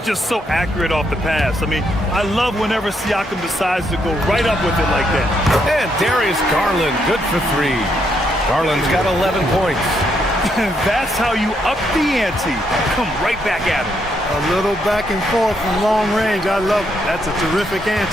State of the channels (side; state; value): both; normal; correlation 0.76